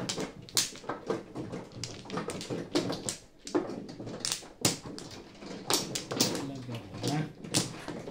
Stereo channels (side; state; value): both; identical; correlation 1.00